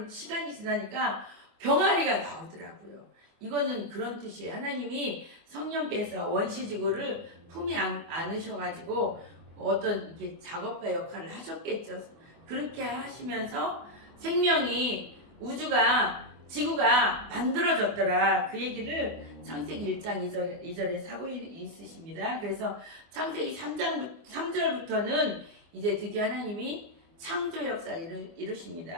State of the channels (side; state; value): left; late; 24 ms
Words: 시간이 지나니까 병아리가 나오더라고요. 이거는 그런 뜻이에요. 하나님이 성령께서 원시지구를 품에 안으셔가지고 어떤 이렇게 작업가 역할을 하셨겠죠. 그렇게 하시면서 생명이 우주가 지구가 만들어졌더라. 그 얘기를 창세기 1장 2절에 사고 있으십니다. 그래서 창세기 3절부터는 이제 드디어 하나님이 창조 역사를